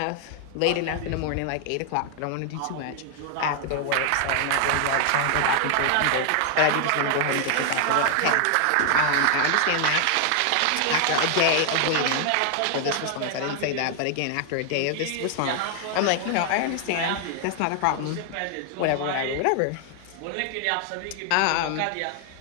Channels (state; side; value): different; both; correlation 0.00